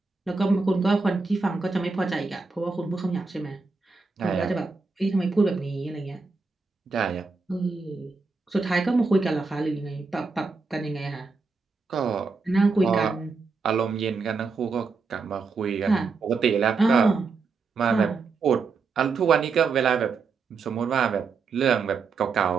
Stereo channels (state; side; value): quieter; left; 4.5 dB